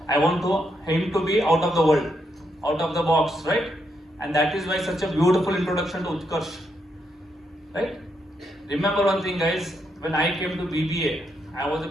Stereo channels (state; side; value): normal; both; correlation 0.79